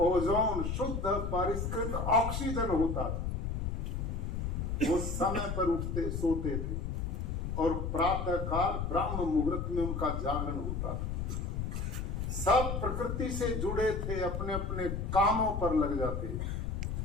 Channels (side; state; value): left; noise; rumble, 2 dB below the sound